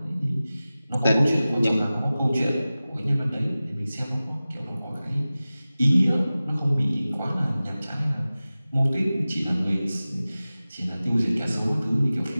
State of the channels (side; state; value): both; inverted; correlation -0.96